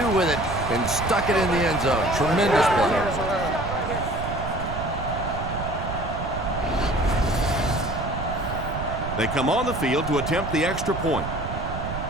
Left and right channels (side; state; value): right; noise; rumble, 6 dB below the sound